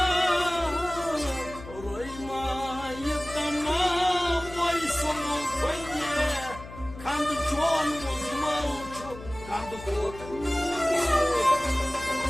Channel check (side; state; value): left; noise; hum, 15 dB below the sound